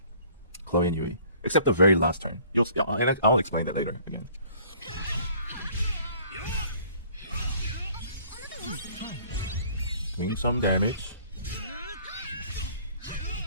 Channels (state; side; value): inverted; both; correlation -0.54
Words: Chloe and Yui, except the very last turn. I'll explain that later again. Doing some damage.